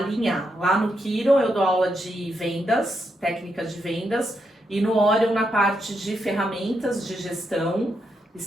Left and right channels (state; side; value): normal; both; correlation 0.81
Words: Lá no Kiron eu dou aula de vendas, técnicas de vendas, e no Orion na parte de ferramentas de gestão